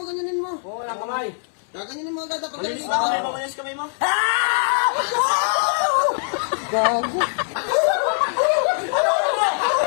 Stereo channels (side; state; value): right; silent; 62 dB below the other